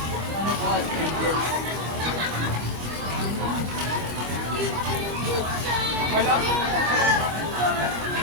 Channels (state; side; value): late; left; 25 ms